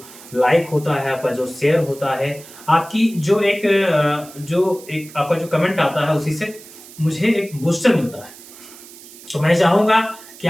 लाइक होता है, आपका जो शेयर होता है, आपकी जो एक आपका जो कमेंट आता है, उसी से मुझे एक बूस्टर मिलता है। तो मैं चाहूंगा कि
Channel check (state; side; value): noise; right; hiss, 19 dB below the sound